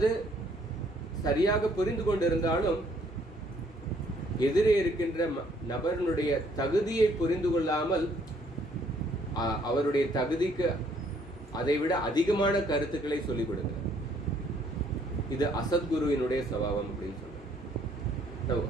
சரியாக புரிந்து கொண்டிருந்தாலும் எதிரே இருக்கின்ற நபரினுடைய தகுதியை புரிந்து கொள்ளாமல் அவருடைய தகுதிக்கு அதைவிட அதிகமான கருத்துக்களை சொல்லிக் கொடுக்கிறார். இது அசத்குருவினுடைய சுபாவம் அப்படின்னு சொல்றோம்.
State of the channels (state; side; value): normal; both; correlation 0.64